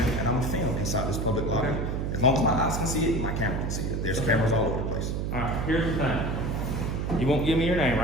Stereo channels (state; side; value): noise; right; hum, 1 dB below the sound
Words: and I'm gonna film inside this public lobby. As long as my eyes can see it, my camera can see it. There's cameras all over the place. All right, here's the thing. You won't give me your name,